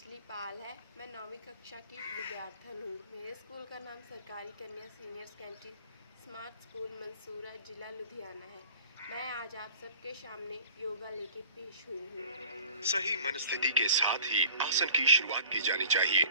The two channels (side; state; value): both; inverted; correlation -0.48